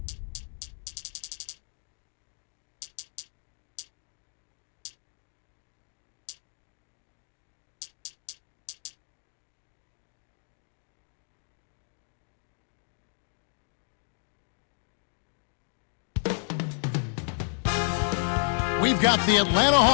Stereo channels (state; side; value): silent; right; digital silence